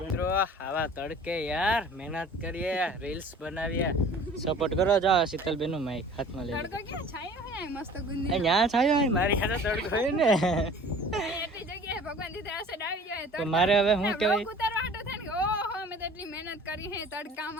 આવા તડકે યાર મહેનત કરીએ, રીલ્સ બનાવીએ, સપોર્ટ કરો. જાઓ શીતલબેન નું માઈક હાથમાં લઈ. તડકો ક્યાં છાયો હે મસ્ત ગુંદી. અહીંયા છાયો હોય, મારી હાથે તડકો હોય ને. એટલી જગ્યાએ ભગવાન દીધે આસે ડાવી જાય તો મારે હવે શું કહેવાય, ઉતારવા હાટો થાય ને, ઓહો મેં તો એટલી મહેનત કરી હે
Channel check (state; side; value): normal; both; correlation 0.46